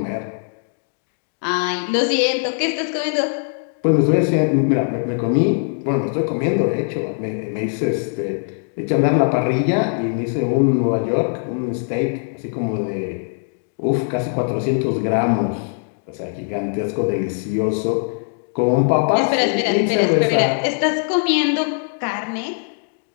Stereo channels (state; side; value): silent; right; 64 dB below the other